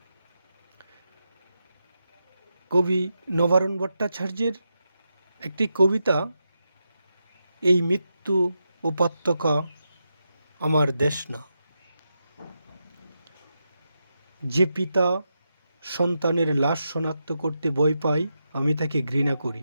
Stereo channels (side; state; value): both; inverted; correlation -0.87